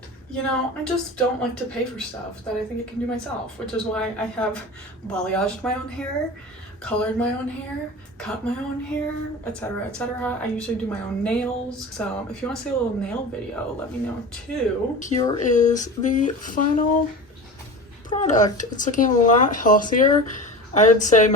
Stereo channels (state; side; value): normal; both; correlation 0.32